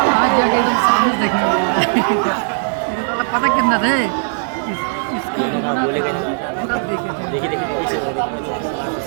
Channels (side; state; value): left; silent; 67 dB below the other